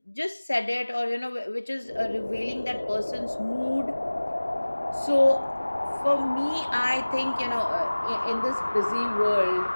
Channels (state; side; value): inverted; both; correlation -1.00